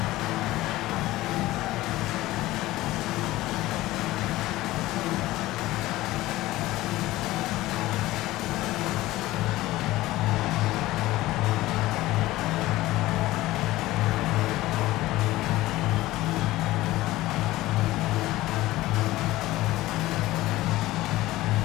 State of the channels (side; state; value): right; quieter; 17.3 dB